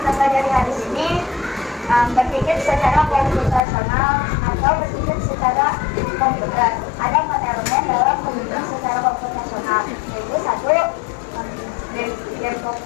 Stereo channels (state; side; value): drops out; right; at 3.6 s